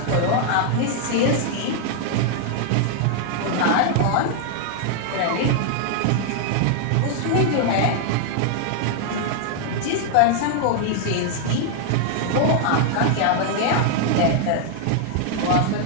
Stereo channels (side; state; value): both; different; correlation 0.00